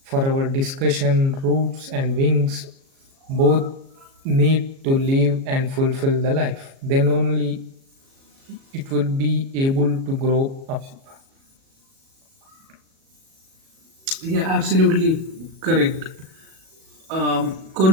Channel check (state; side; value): late; left; 37 ms